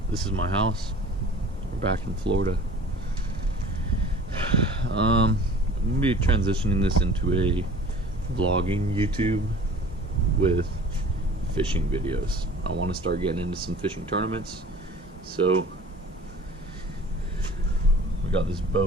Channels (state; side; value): normal; both; correlation 0.46